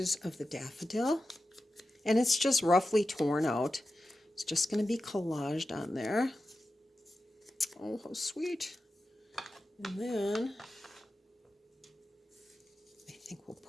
of the daffodil. And it's just roughly torn out. It's just going to be collaged on there. Oh, how sweet. And then I think we'll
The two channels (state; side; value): normal; both; correlation 0.92